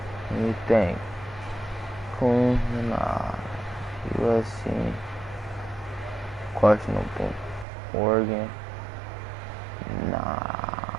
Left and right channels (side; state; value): left; drops out; at 7.7 s